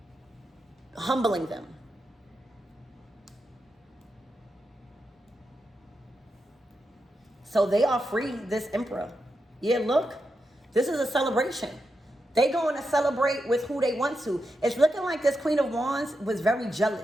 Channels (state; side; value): normal; both; correlation 0.87